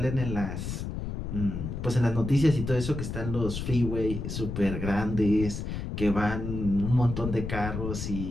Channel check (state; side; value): noise; left; rumble, 5 dB below the sound